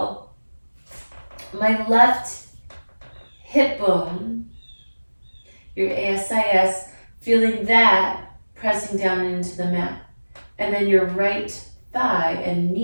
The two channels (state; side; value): inverted; both; correlation -1.00